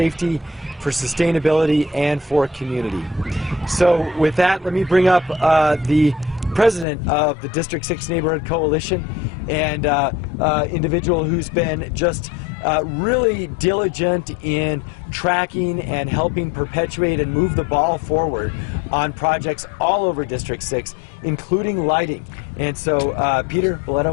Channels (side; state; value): right; drops out; at 6.9 s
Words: for sustainability, and for community. So with that, let me bring up the president of the District 6 Neighborhood Coalition, and individual who's been just really diligent in tracking and helping perpetuate and move the ball forward on projects all over District 6, including lighting. And so, Peter